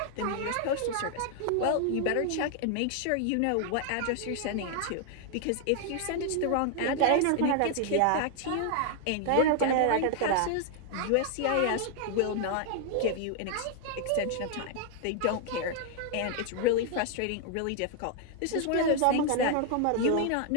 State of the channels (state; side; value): different; both; correlation 0.00